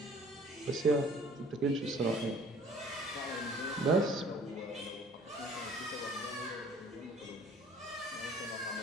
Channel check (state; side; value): normal; both; correlation 0.53